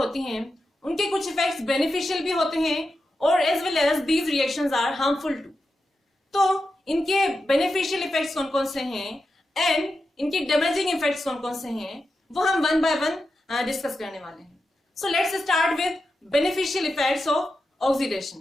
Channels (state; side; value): normal; both; correlation 0.89